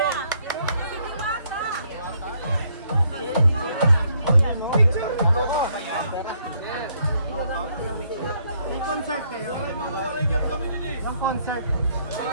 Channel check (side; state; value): both; inverted; correlation -0.70